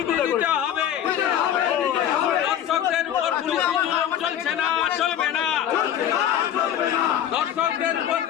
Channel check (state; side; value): quieter; right; 10.2 dB